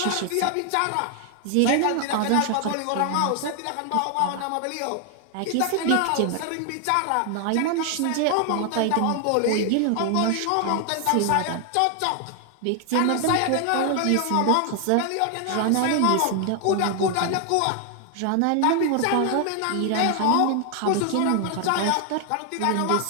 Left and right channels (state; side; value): different; both; correlation 0.00